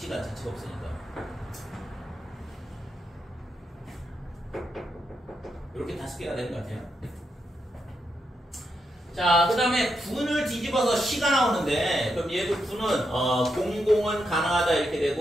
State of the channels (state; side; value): normal; both; correlation 0.83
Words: 자체가 없으니까. 이렇게 5개가 되는 것 같아요. 자, 그 다음에 분을 뒤집어서 시가 나오는데, 그럼 얘도 분은 00은 가능하다 이렇게